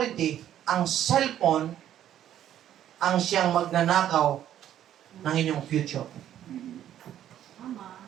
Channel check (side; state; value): left; quieter; 11.2 dB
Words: ang cellphone, ang siyang magnanakaw ng inyong future.